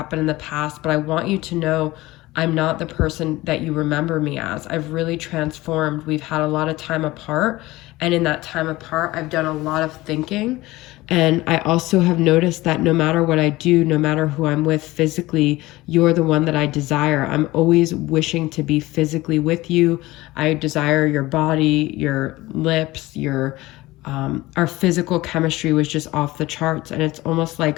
in the past, but I want you to know I'm not the person that you remember me as. I've really transformed. We've had a lot of time apart, and in that time apart, I've done a lot of thinking. And I also have noticed that no matter what I do, no matter who I'm with physically, you're the one that I desire. I'm always wishing to be physically with you. I desire your body, your lips, our physical chemistry was just off the charts. And it's almost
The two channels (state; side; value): quieter; right; 19.0 dB